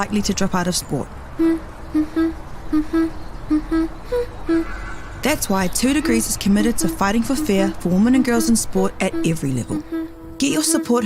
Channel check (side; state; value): both; identical; correlation 1.00